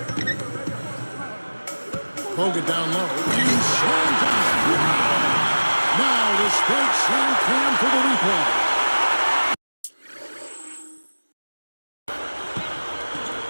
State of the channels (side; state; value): both; inverted; correlation -1.00